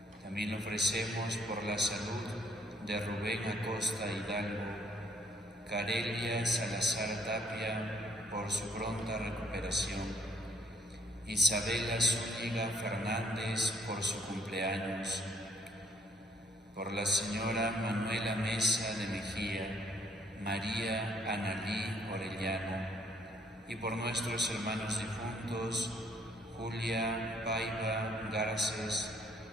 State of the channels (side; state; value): both; normal; correlation 0.67